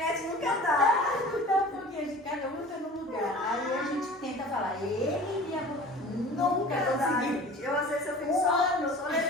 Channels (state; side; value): normal; both; correlation 0.42